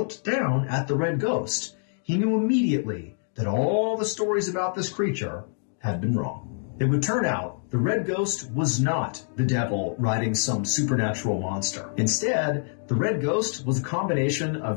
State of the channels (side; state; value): right; silent; digital silence